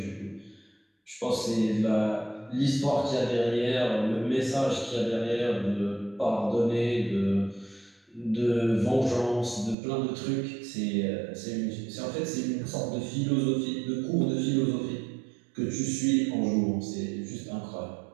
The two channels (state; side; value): drops out; left; at 9.8 s